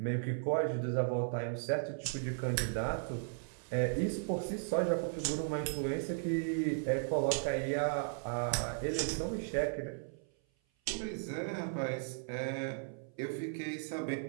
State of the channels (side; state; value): left; silent; 54 dB below the other